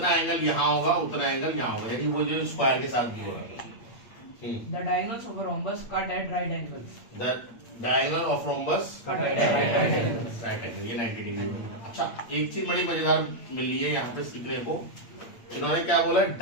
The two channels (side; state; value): right; late; 8.6 ms